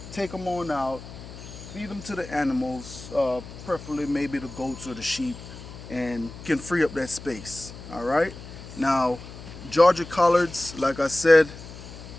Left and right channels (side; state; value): left; noise; hum, 14 dB below the sound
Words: take them on out, feed them to the animals, preferably maybe the goats or the sheep, and can free up that space. All right, now Georgia collards, like I said,